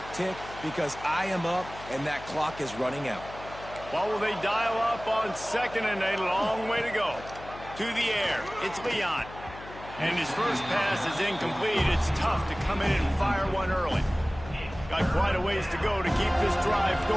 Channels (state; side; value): noise; left; hum, 15 dB below the sound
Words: tick because I am up and that clock is running out. What will they dial up on second and a long way to go? To the air, it's Leon. And his first pass is incomplete. It's tough to come in and fire one early. Got quite a ways to go to keep this drive